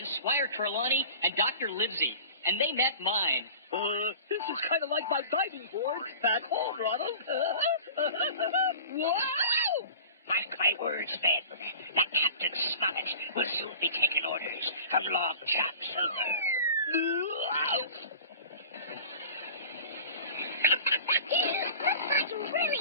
Squire Trelawney and Dr. Livesey, and they met mine. This is kind of like my diving board back home, Ronald. Wow! Mark my words, men. That Captain Smollett will soon be taking orders from Long John Silver. Looks like you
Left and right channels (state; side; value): inverted; both; correlation -0.39